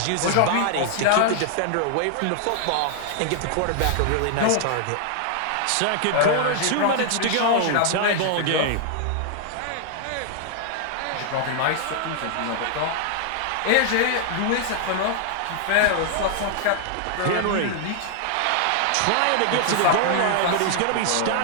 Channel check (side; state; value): both; different; correlation 0.00